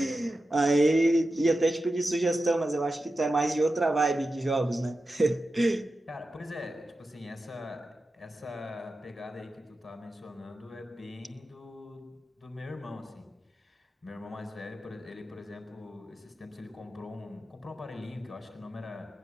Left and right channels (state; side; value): normal; both; correlation 0.92